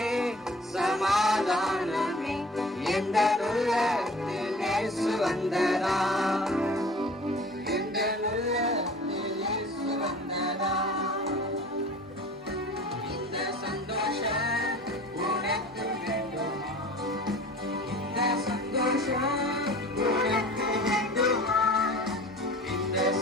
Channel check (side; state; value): both; normal; correlation 0.44